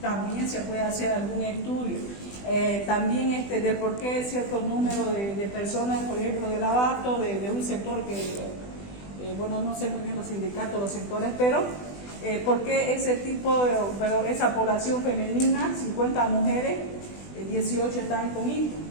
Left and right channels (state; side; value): late; right; 20 ms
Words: También se puede hacer algún estudio. También del por qué cierto número de personas, por ejemplo, del abasto, de un sector que, bueno, no sé muy bien los sindicatos, los sectores, pero por qué ese tipo, esa población femenina, 50 mujeres, 18 están con